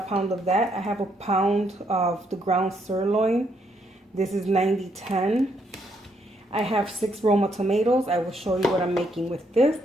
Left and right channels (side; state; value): both; normal; correlation 0.74